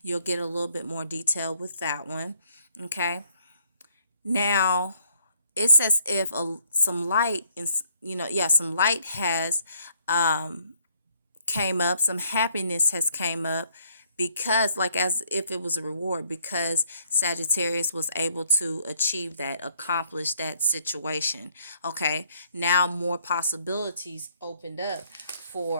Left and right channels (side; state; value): both; inverted; correlation -0.66